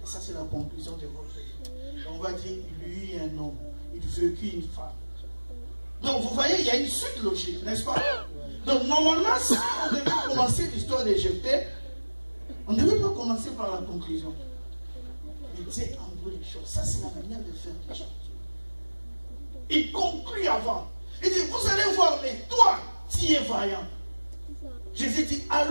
ça, c'est la conclusion de votre vie. On va dire, il eut un homme, il vécut une femme. Donc, vous voyez, il y a une suite logique, n'est-ce pas? Donc, normalement, si on devait commencer l'histoire de Jephthé, on ne devait pas commencer par la conclusion. Mais Dieu envoie les choses. Ça, c'est la manière de faire les choses. Il conclut avant. Il dit, vous allez voir, mais toi, tu es vaillant. Jésus dit,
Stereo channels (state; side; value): inverted; both; correlation -1.00